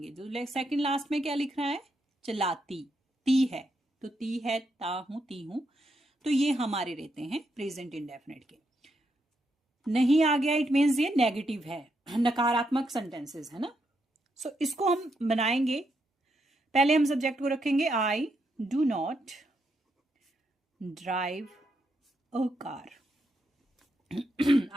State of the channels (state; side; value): normal; both; correlation 0.80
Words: जो सेकंड लास्ट में क्या लिख रहा है? चलाती, ती है, तो ती है, ता हूं, ती हूं, तो ये हमारे रहते हैं प्रेजेंट इंडेफिनिट के। नहीं आ गया, इट मीन्स ये नेगेटिव है, नकारात्मक सेंटेंसेस है ना। इसको हम बनाएंगे। पहले हम सब्जेक्ट को रखेंगे I do not drive a car.